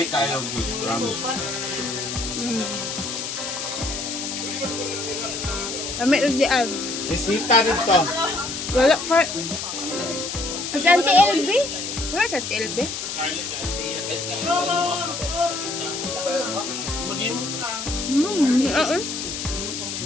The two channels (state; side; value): noise; left; hiss, 5 dB below the sound